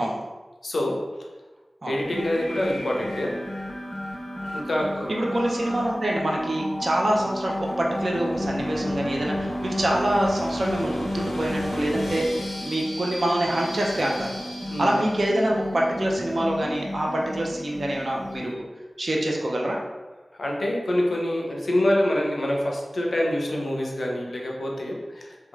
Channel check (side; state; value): both; normal; correlation 0.96